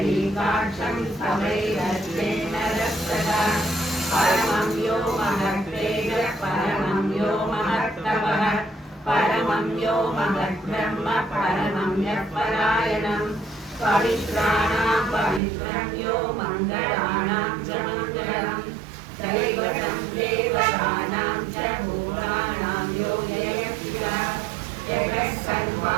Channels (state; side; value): drops out; left; at 15.4 s